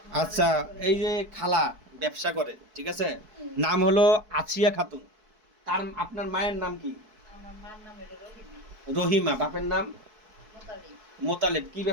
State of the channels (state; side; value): late; left; 4.6 ms